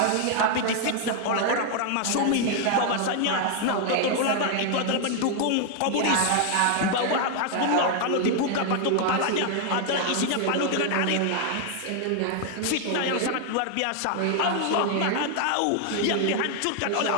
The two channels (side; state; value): both; different; correlation 0.00